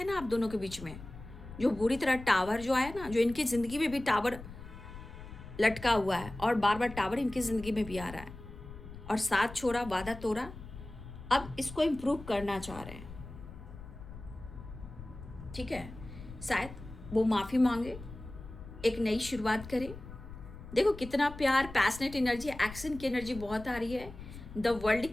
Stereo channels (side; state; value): left; noise; rumble, 14 dB below the sound